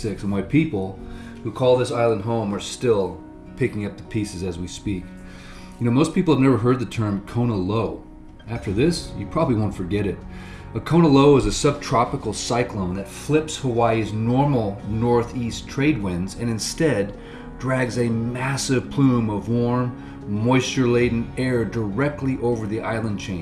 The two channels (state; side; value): identical; both; correlation 1.00